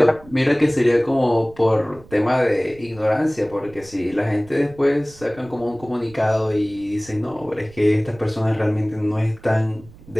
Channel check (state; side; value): noise; right; rumble, 22 dB below the sound